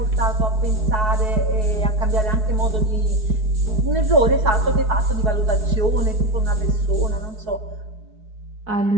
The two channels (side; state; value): left; late; 4.6 ms